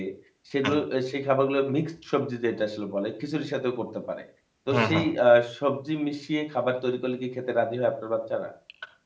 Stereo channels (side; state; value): both; identical; correlation 1.00